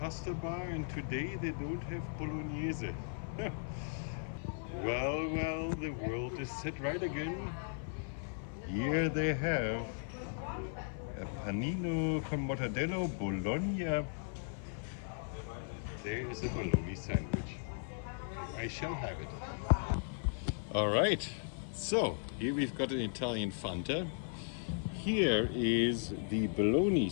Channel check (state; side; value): silent; right; 53 dB below the other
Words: bar, and today they don't have bolognese. Well, the world is set right again. Here they have a panino con mortadello Bologna there is a bologna sandwich. I shall have it. All right, so here we've got an Italian Fanta. Here is the bologna